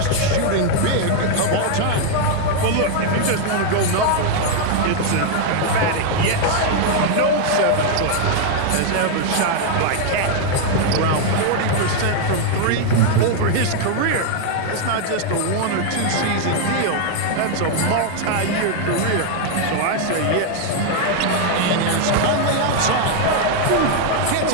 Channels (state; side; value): different; both; correlation 0.00